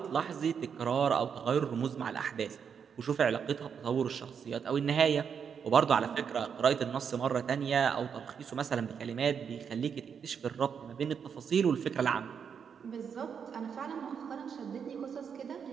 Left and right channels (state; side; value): quieter; left; 7.0 dB